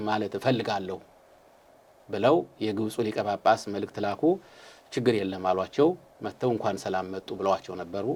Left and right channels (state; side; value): identical; both; correlation 1.00